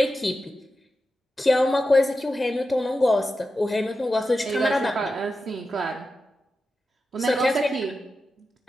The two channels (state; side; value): normal; both; correlation 0.91